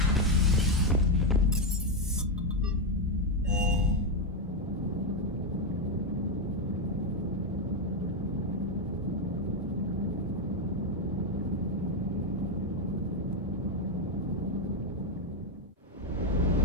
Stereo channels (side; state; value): both; normal; correlation 0.04